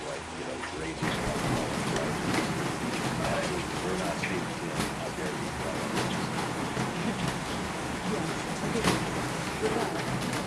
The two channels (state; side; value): identical; both; correlation 1.00